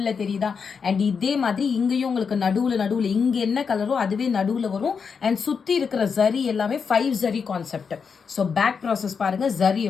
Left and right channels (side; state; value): right; quieter; 5.9 dB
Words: தெரியுதா? அண்ட் இதே மாதிரி இங்கேயும் உங்களுக்கு நடுவில் இங்கே என்ன கலரோ அதுவே நடுவில் வரும். அண்ட் சுற்றி இருக்கிற ஜரி எல்லாமே 5 zari concept. So back process பாருங்க ஜரி